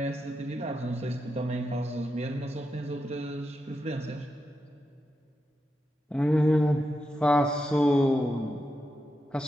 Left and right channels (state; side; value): normal; both; correlation 0.87